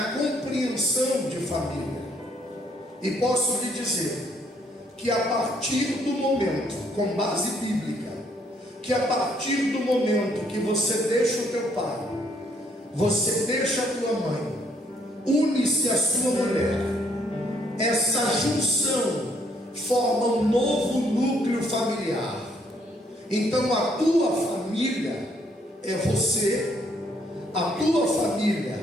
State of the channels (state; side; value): normal; both; correlation 0.68